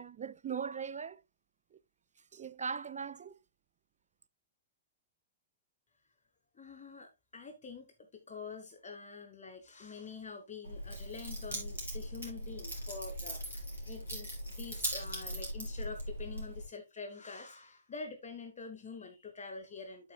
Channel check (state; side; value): inverted; both; correlation -0.50